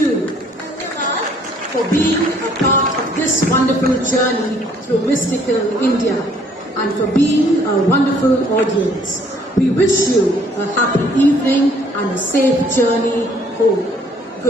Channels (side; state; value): both; normal; correlation 0.62